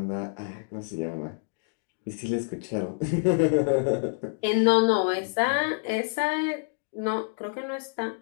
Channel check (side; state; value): right; silent; digital silence